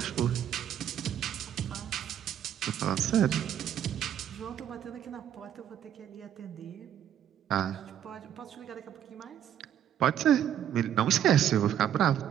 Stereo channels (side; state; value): left; quieter; 10.2 dB